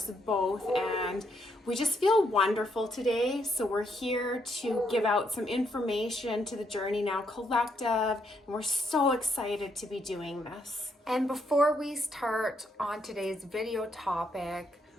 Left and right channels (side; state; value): both; normal; correlation 0.75